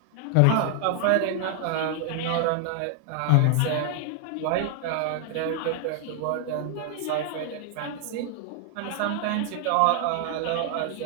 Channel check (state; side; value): different; both; correlation 0.00